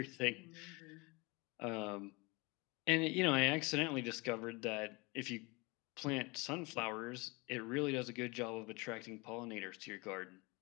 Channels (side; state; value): right; quieter; 26.3 dB